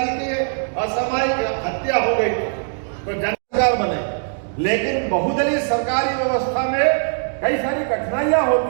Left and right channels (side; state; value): left; silent; digital silence